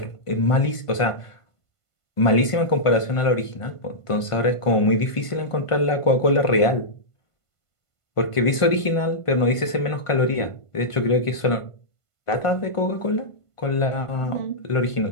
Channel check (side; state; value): right; late; 1.5 ms